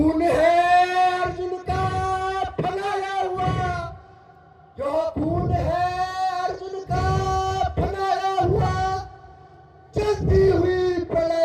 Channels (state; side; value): identical; both; correlation 1.00